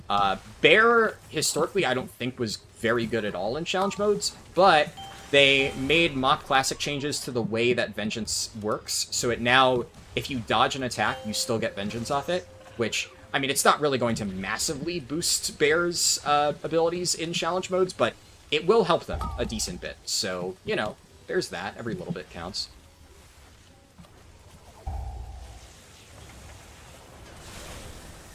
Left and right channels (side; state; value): both; identical; correlation 1.00